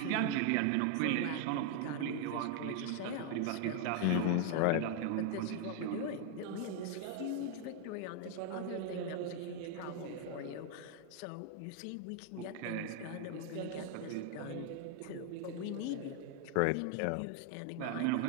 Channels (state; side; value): different; both; correlation 0.00